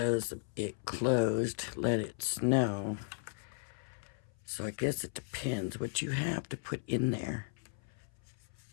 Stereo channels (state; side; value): silent; right; 54 dB below the other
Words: it closed. Let it snow. So I guess it depends what you have to put in there.